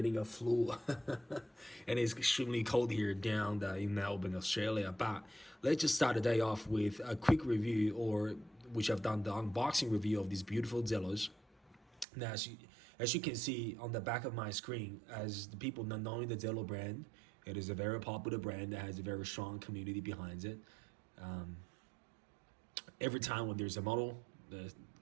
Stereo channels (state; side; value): drops out; left; at 12.1 s